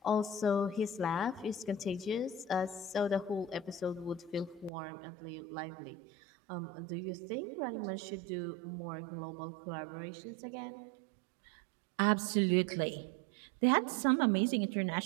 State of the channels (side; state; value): left; drops out; at 4.7 s